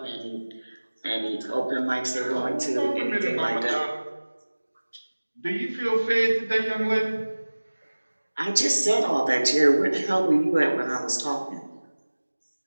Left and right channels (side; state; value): both; inverted; correlation -1.00